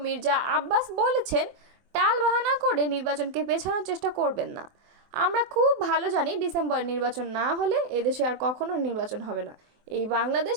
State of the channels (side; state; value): left; late; 24 ms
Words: মির্জা আব্বাস বলেছেন, টালবাহানা করে নির্বাচনকে পেছানোর চেষ্টা করবেন না। আমরা খুব ভালো জানি, ডিসেম্বরে নির্বাচন না হলে এদেশে আর কখনো নির্বাচন হবে না। এই বাংলাদেশ